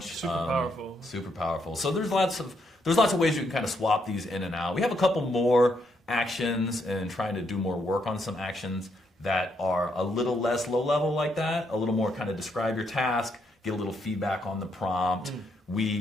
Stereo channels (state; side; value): normal; both; correlation 0.76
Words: Super powerful. So there's lots of ways you can kind of swap these in and out. We have a couple more actions and trying to do more work on some actions that are a little less low level like that, a little more kind of describe your task, get a little feedback on the prompt.